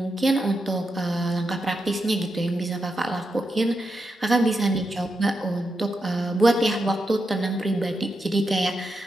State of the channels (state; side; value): normal; both; correlation 0.86